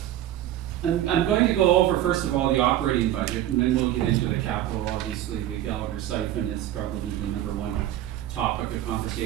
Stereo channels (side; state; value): left; quieter; 12.8 dB